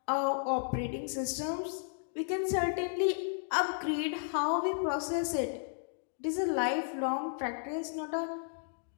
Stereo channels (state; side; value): silent; right; digital silence